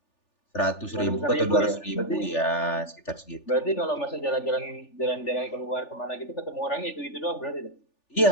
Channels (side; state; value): right; late; 3.4 ms